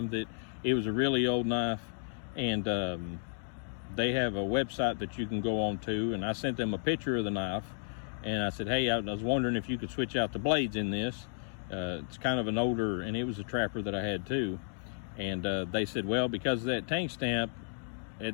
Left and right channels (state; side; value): silent; right; digital silence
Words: that it was a really old knife, and they have a website that you can go on to, and I sent them a picture of the knife, and I said, hey, I was wondering if you could switch out the blades in this. It's kind of an older, and it was a trapper that I had too, and they said, well, because of that tank stamp,